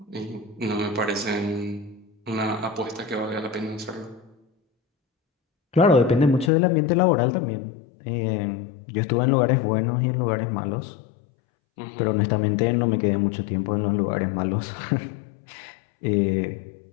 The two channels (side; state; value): right; drops out; at 6.5 s